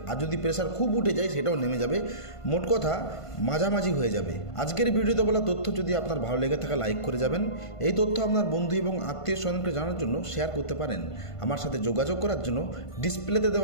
আর যদি প্রেশার খুব উঠে যায় সেটাও নেমে যাবে। মোট কথা মাঝামাঝি হয়ে যাবে। আজকের ভিডিওতে বলা তথ্য যদি আপনার ভালো লেগে থাকে লাইক করে যাবেন। এই তথ্য আপনার বন্ধু এবং আত্মীয় স্বজনকে জানার জন্য শেয়ার করতে পারেন। আমার সাথে যোগাযোগ করার জন্য ডিসপ্লেতে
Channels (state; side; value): late; right; 1.5 ms